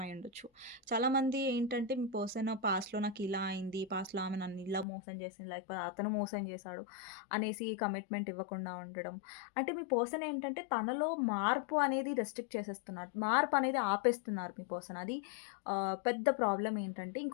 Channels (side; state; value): right; drops out; at 4.9 s